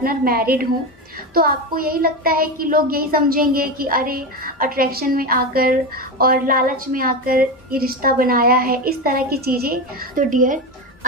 मैरिड हों, तो आपको यही लगता है कि लोग यही समझेंगे कि अरे अट्रैक्शन में आकर और लालच में आकर ये रिश्ता बनाया है, इस तरह की चीज़ें। तो डियर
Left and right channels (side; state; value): both; normal; correlation 0.18